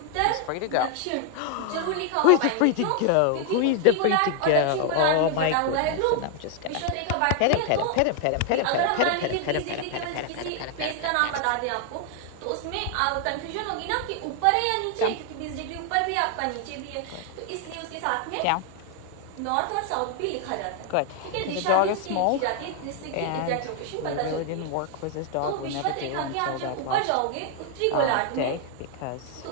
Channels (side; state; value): both; different; correlation 0.00